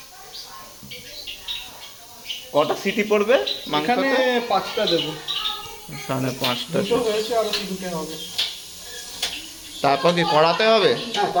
কটা সিটি পড়বে এখানে মাংসতে? 5টা দেবো। এখানে 5টা। দুটো হয়েছে, আরো 3টে হবে। তারপর কি কড়াতে হবে? হ্যাঁ,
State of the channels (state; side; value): identical; both; correlation 1.00